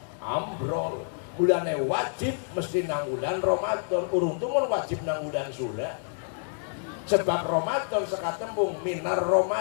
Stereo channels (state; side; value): silent; right; 59 dB below the other